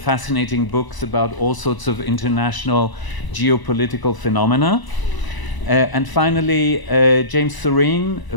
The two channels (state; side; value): late; right; 1.0 ms